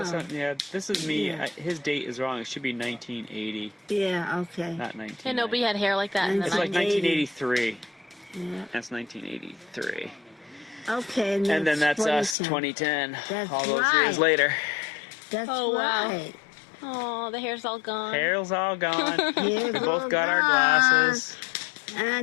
no. something- yeah, this is me. Yeah. His date is wrong. It should be 1980, Yeah, okay. not 19. And nobody had hair like that in the It's like 90s. 1983. Yeah. That's 1983. Okay. And then that's us, 2010. That's all those right. years later. That's Oh, wow. right. Oh, the hair's all gone. Hair's all gone. Hair's We all both got our gone. glasses.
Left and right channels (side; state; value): right; drops out; at 12.4 s